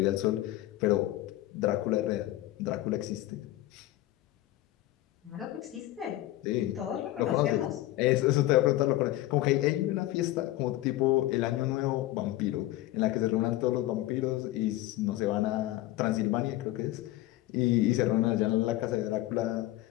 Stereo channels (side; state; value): right; quieter; 16.1 dB